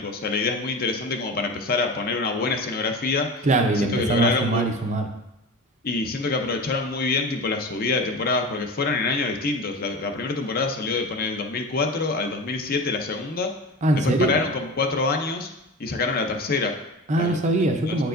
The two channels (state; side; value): normal; both; correlation 0.31